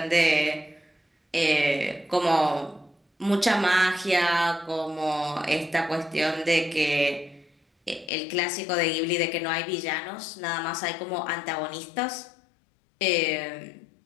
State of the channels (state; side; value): drops out; right; at 8.1 s